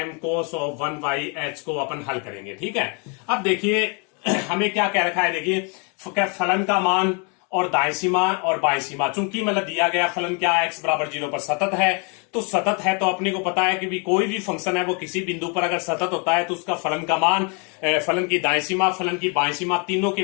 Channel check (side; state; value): right; quieter; 35.2 dB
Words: cos of 1/h को अपन हल करेंगे। ठीक है, अब देखिए हमें क्या कह रखा है, देखिए फलन का मान और दाएं सीमा और बाएं सीमा, चूंकि मतलब दिया गया फलन क्या है, x बराबर 0 पर सतत है, तो सतत है तो अपने को पता है कि भी कोई भी फंक्शन है वो किसी बिंदु पर अगर सतत होता है तो उसका फलन का मान, फलन की दाएं सीमा, फलन की बाएं सीमा, तीनों के